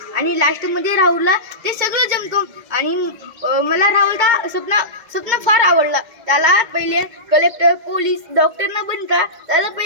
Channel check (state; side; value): late; left; 2.2 ms